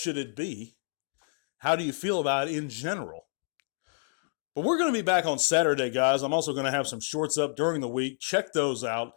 it be? How do you feel about it in general? But we're going to be back on Saturday, guys. I'm also going to have some shorts up during the week. Check those out.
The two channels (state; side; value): silent; right; digital silence